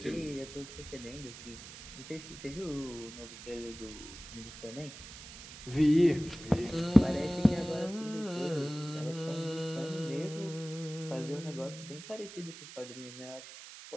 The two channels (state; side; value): noise; right; hiss, 14 dB below the sound